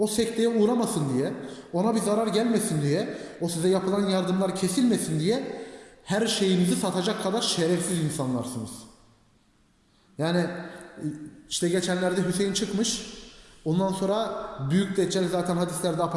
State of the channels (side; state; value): both; identical; correlation 1.00